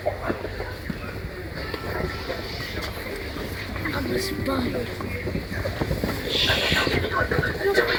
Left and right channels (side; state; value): both; identical; correlation 1.00